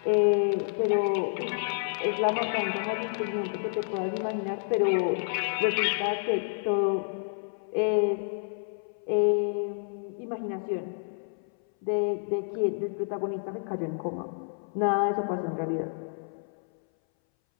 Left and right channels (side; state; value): right; silent; 58 dB below the other